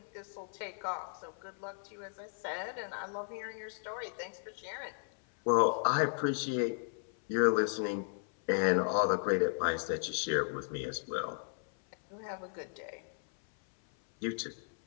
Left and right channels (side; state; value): right; silent; 54 dB below the other